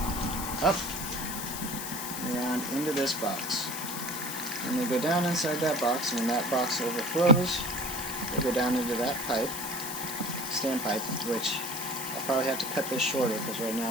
up, around into this box. And they go down inside that box, and when that box overflows, they go down into that pipe, standpipe, which I'll probably have to cut this shorter because right now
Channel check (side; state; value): left; noise; hiss, 6 dB below the sound